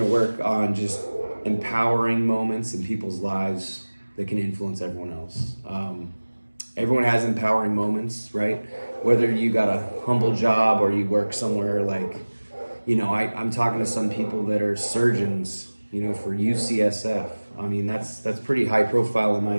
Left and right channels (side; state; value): both; inverted; correlation -1.00